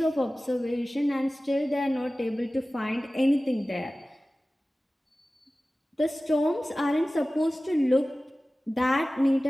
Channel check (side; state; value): both; normal; correlation 0.97